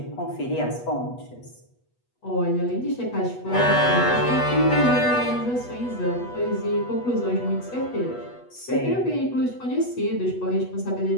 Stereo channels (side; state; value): right; late; 8.2 ms